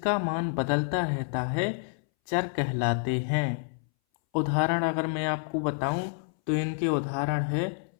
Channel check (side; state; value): right; silent; 59 dB below the other